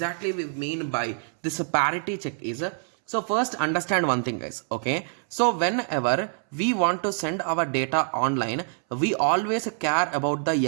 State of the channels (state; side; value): silent; left; 61 dB below the other